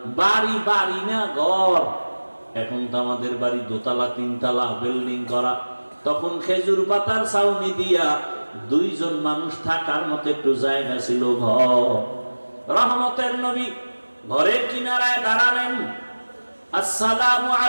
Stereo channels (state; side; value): inverted; both; correlation -1.00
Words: বাড়ি বাড়ি না ঘর, এখন তো আমাদের বাড়ি দোতলা তিনতলা বিল্ডিং করা, তখন খেজুর পাতার ছাউনি দিয়া 2 জন মানুষ থাকার মতো একটু জায়গা ছিল ঘর। রহমতের নবী ঘরের কিনারায় দাঁড়ালেন, আসসালামু